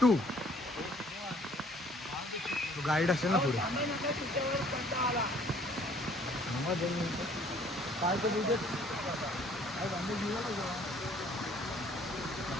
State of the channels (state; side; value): normal; both; correlation 0.58